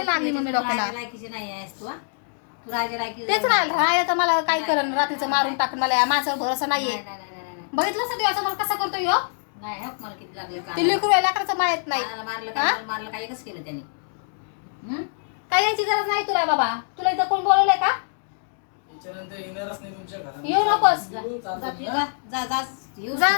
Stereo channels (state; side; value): silent; right; digital silence